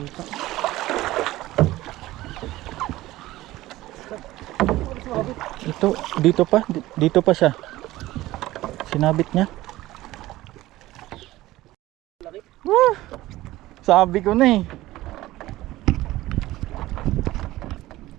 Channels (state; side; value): quieter; left; 16.9 dB